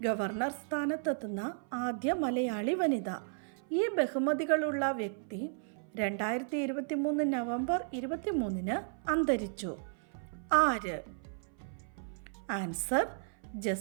ഗവർണർ സ്ഥാനത്തെത്തുന്ന ആദ്യ മലയാളി വനിത. ഈ ബഹുമതികളുള്ള വ്യക്തി 2023 നവംബർ 23 അന്തരിച്ചു. ആര്? Answer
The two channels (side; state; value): left; silent; 55 dB below the other